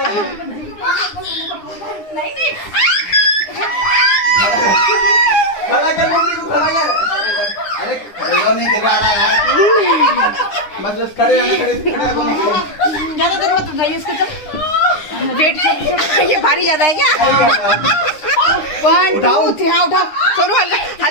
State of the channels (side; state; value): right; late; 9.8 ms